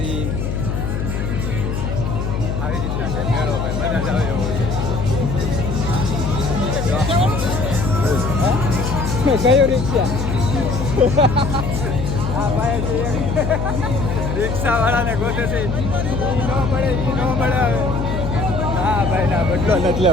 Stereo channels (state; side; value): noise; left; hum, 2 dB below the sound